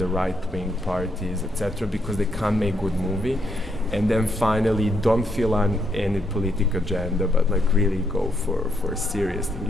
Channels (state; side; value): normal; both; correlation 0.77